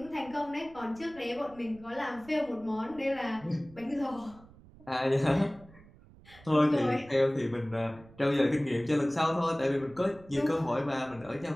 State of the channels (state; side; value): noise; right; rumble, 23 dB below the sound